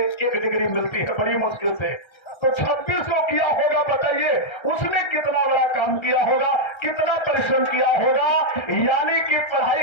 1 डिग्री मिलती है बड़ी मुश्किल से। तो 26 को किया होगा, बताइए उसने कितना बड़ा काम किया होगा, कितना परिश्रम किया होगा। यानी कि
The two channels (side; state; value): right; late; 1.3 ms